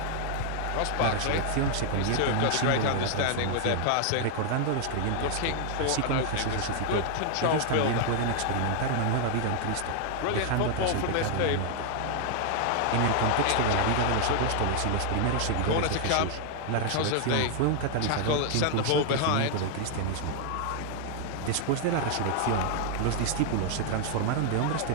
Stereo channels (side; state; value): both; different; correlation 0.00